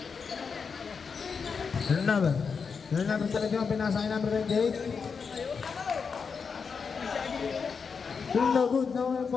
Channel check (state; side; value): quieter; right; 5.6 dB